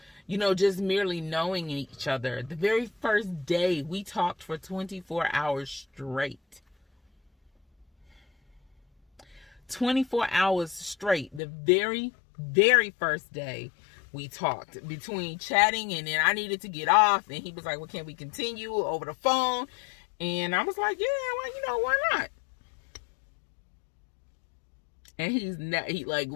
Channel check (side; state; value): right; drops out; at 11.4 s